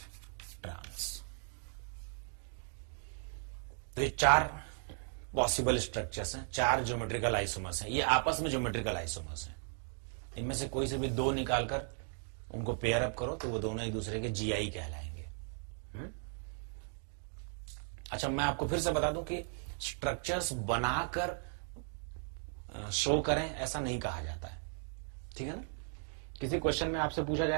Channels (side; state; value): left; silent; 53 dB below the other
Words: ट्रांस। तो ये 4 पॉसिबल स्ट्रक्चर्स हैं, 4 ज्योमेट्रिकल आइसोमर्स हैं, ये आपस में ज्योमेट्रिकल आइसोमर्स हैं। इनमें से कोई से भी 2 निकालकर उनको पेयर अप करो तो वो दोनों एक दूसरे के जीआई कहलाएंगे। अच्छा, मैं आपको फिर से बता दूं कि स्ट्रक्चर्स बनाकर शो करें ऐसा नहीं कहा जाता है, ठीक है ना। किसी क्वेश्चन में आपसे पूछा